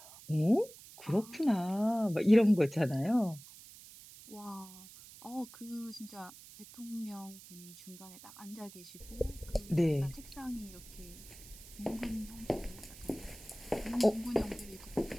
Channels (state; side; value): noise; right; hiss, 18 dB below the sound